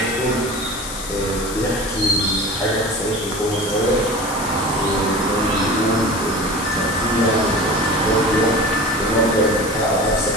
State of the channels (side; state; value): left; noise; hiss, 9 dB below the sound